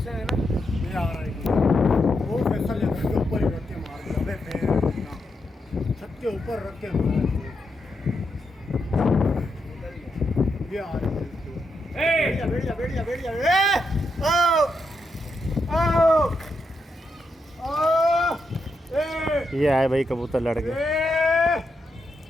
है ना, ये आ रहा है वो फैसल के ऊपर ही रख के मार दिया। अबे भेड़ की टांग, छत के ऊपर रख के मार दिया। ये आ रहा है, बैठ जा, ये आए भाई कबूतर लड़ गए।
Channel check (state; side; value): normal; both; correlation 0.83